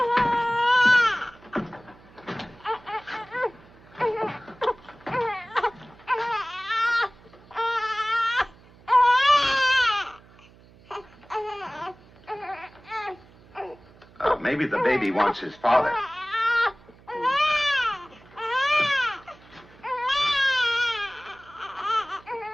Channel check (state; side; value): noise; right; hum, 25 dB below the sound